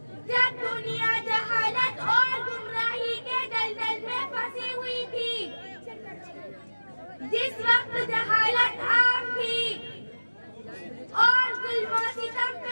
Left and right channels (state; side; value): inverted; both; correlation -1.00